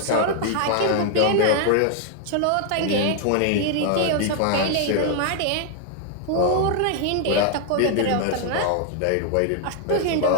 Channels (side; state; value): both; different; correlation 0.00